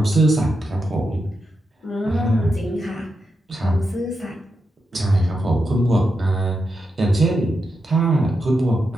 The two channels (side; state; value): both; normal; correlation 0.86